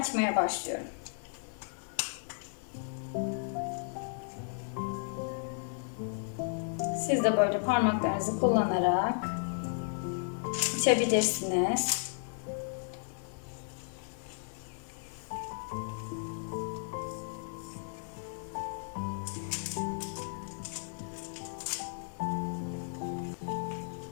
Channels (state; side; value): silent; right; 55 dB below the other